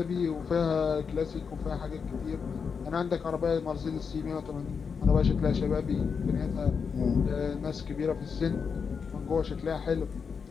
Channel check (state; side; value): quieter; right; 5.9 dB